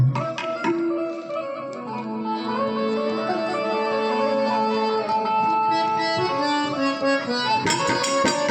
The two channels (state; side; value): identical; both; correlation 1.00